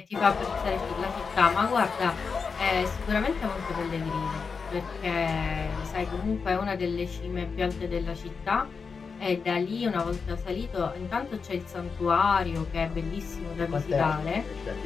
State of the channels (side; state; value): right; quieter; 5.3 dB